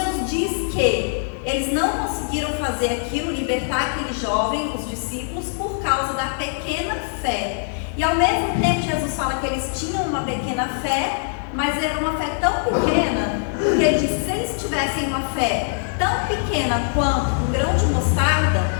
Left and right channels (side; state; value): right; silent; 61 dB below the other